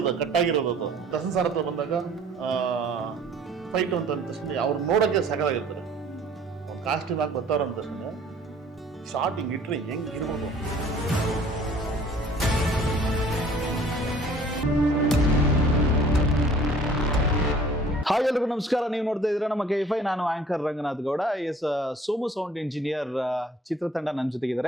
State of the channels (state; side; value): normal; both; correlation 0.53